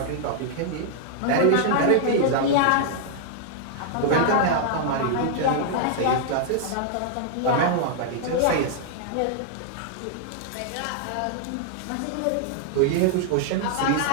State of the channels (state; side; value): different; both; correlation -0.01